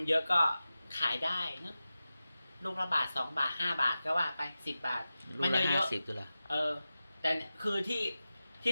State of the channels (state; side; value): inverted; both; correlation -0.94